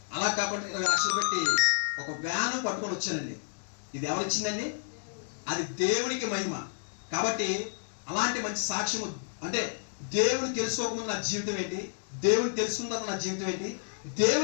అలా కాకుండా 20 లక్షలు పెట్టి ఒక వ్యాను పట్టుకొని వచ్చానండి. ఇది ఎవరిచ్చిందండి? అది దేవునికి మహిమ. కాబట్టి అలాంటి మంచి సాక్ష్యము అంటే దేవుని తెలుసుకోకముందు నా జీవితం ఏంటి, దేవుని తెలుసుకున్న తర్వాత నా జీవితం ఏంటి,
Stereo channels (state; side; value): silent; right; digital silence